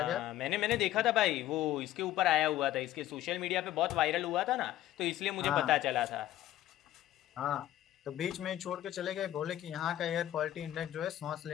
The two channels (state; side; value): quieter; right; 13.6 dB